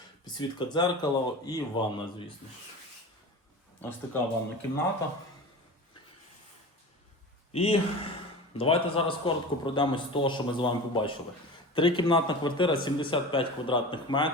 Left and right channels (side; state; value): both; normal; correlation 0.33